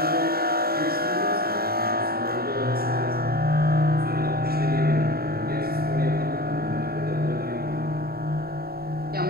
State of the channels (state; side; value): late; left; 0.45 ms